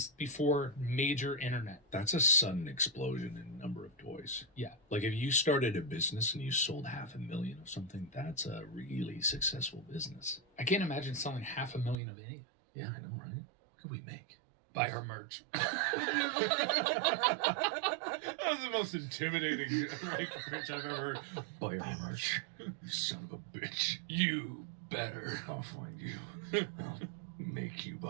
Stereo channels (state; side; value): drops out; left; at 12.0 s